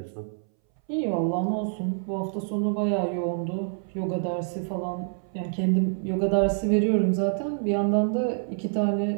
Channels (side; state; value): left; silent; 60 dB below the other